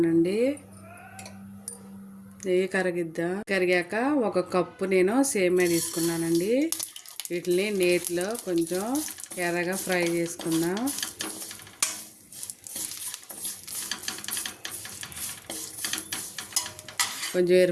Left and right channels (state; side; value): identical; both; correlation 1.00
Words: నెయ్యి కరిగాక ఒక కప్పు నేను సేమ్యా తీసుకున్నానండి. వీటిని నేతిలో కొంచెం ఎర్రగా ఫ్రై చేసుకుందాం. కొంచెం